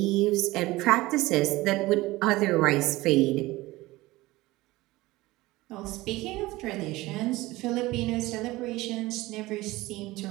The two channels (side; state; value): left; quieter; 19.3 dB